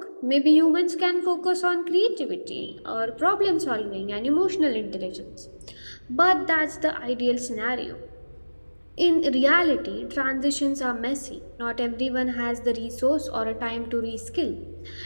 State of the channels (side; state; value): both; inverted; correlation -1.00